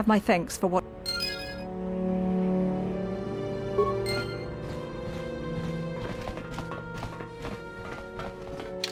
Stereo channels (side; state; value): both; identical; correlation 1.00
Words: my thanks for what...